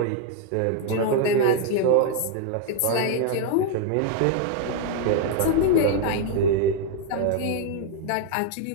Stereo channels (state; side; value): different; both; correlation 0.00